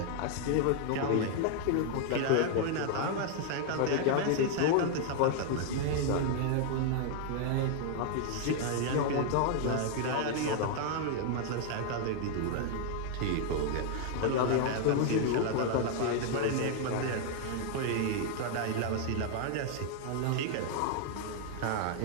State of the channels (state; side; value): different; both; correlation 0.00